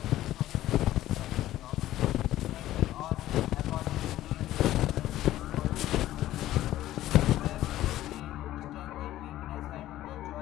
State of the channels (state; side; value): quieter; right; 14.3 dB